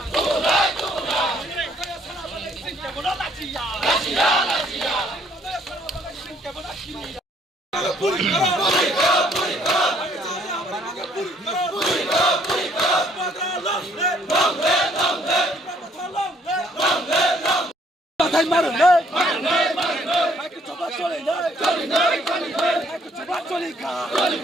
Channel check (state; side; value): normal; both; correlation 0.64